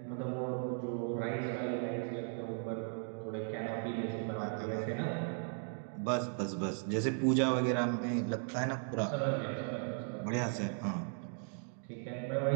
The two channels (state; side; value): silent; left; 53 dB below the other